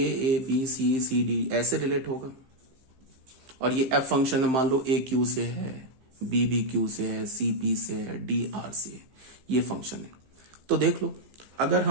B C C D ऐसे रिलेट होगा, और ये एफ फंक्शन है, मान लो ए क्यू से है, बी क्यू से है, सी पी से है, डी आर से है, ये फंक्शन है। तो देख लो, अगर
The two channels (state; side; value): late; left; 15 ms